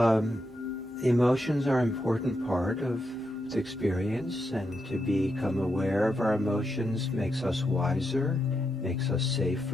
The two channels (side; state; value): both; normal; correlation 0.84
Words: emotions are an important part of the experience, and to become aware of our emotions makes us wiser, makes us